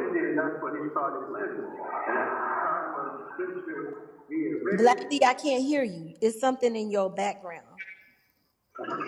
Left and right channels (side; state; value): both; identical; correlation 1.00